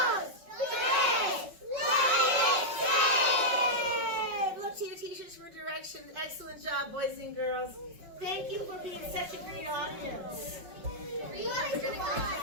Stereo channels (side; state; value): left; late; 5.4 ms